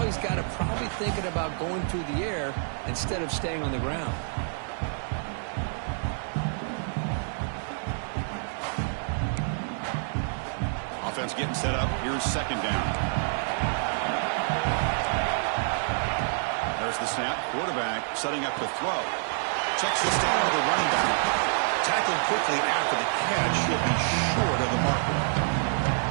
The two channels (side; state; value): left; silent; digital silence